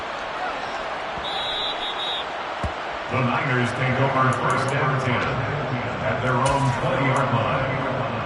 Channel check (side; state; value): both; identical; correlation 1.00